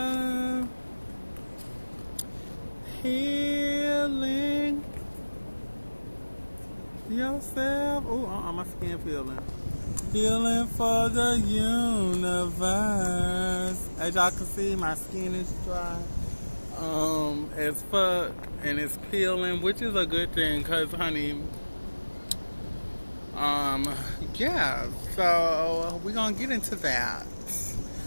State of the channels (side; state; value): both; inverted; correlation -1.00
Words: Healing yourself. Oh, my skin feeling. Healing for the universe. As y'all can see, my skin is dry. As fuck, and it's peeling, which is a good thing, cause honey, um, yeah. So we're gonna get into that.